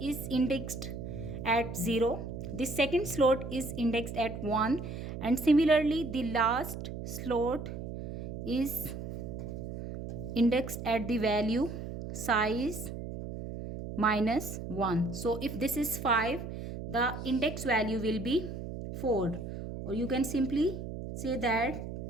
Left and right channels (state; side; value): noise; right; hum, 7 dB below the sound